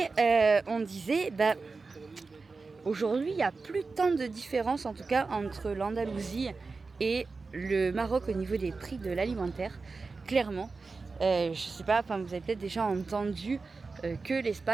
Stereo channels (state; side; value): quieter; left; 4.1 dB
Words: on disait, aujourd'hui il n'y a plus tant de différence en tout cas entre l'Andalousie et le Maroc au niveau des prix de l'alimentaire, clairement. Je sais pas, vous avez peut-être déjà entendu que